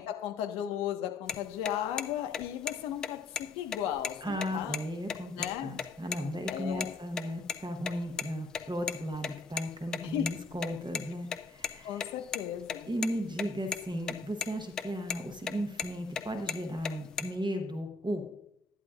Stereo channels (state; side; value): quieter; right; 3.3 dB